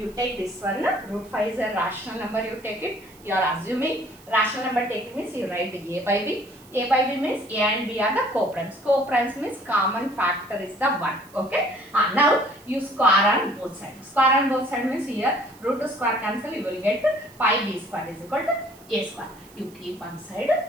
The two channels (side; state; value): right; noise; hiss, 25 dB below the sound